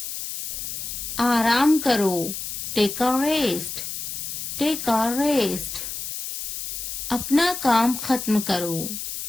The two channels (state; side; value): noise; left; hiss, 6 dB below the sound